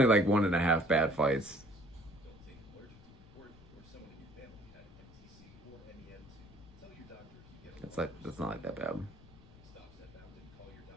like 1.5 bad fights. That's not like that bad.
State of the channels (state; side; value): noise; left; rumble, 22 dB below the sound